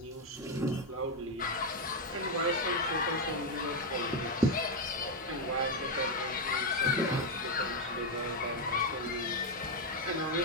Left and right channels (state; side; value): normal; both; correlation 0.05